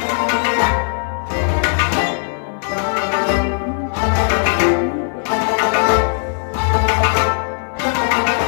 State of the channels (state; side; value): silent; right; digital silence